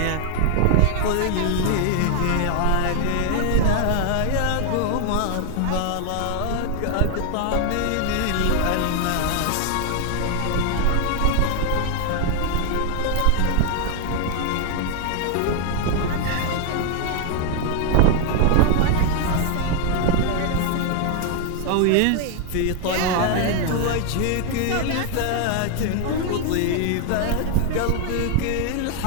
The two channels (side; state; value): both; different; correlation 0.00